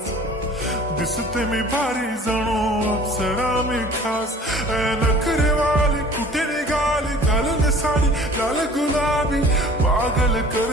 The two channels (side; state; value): both; normal; correlation 0.48